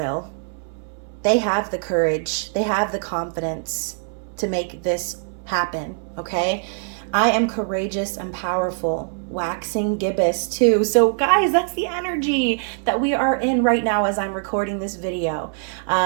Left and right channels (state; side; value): silent; left; 64 dB below the other